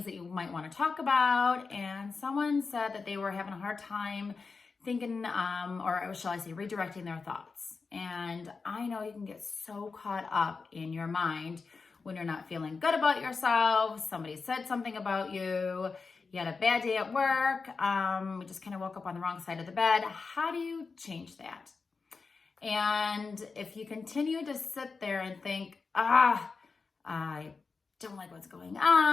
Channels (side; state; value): right; quieter; 4.6 dB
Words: that you might want to talk about, and someone said that they were having a hard time thinking, or shall I say, redirecting their thoughts. And I know you can get so caught up in your mind when you're not feeling good about yourself, somebody said something about you, you had a bad day at work, we just kind of woke up on the wrong side of the bed. How do you change that? And if you continue to sit there and think, I don't like what's going